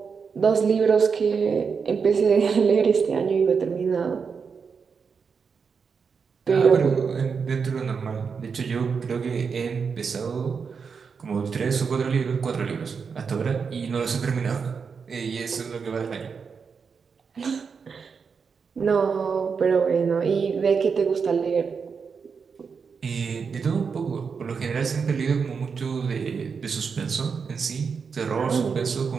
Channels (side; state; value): left; quieter; 5.8 dB